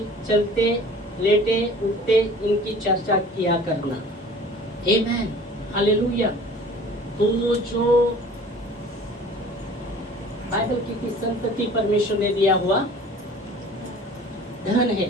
चलते लेटे उठते इनकी चर्चा किया करना। आमीन। हालेलुया। तो जो बाइबल की संतति परमेश्वर ने दिया हुआ धन है,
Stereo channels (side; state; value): both; normal; correlation 0.46